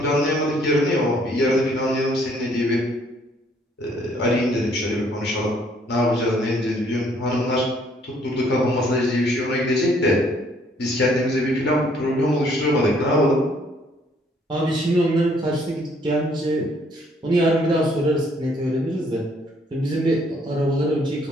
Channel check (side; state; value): both; normal; correlation 0.64